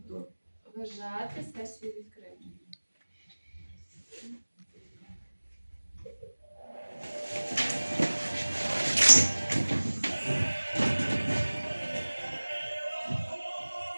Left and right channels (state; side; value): inverted; both; correlation -1.00